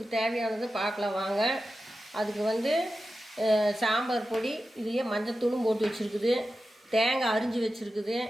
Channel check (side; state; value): both; normal; correlation 0.92